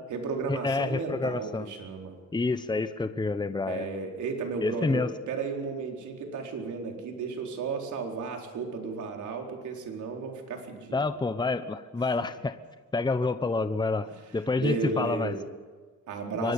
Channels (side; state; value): both; normal; correlation 0.52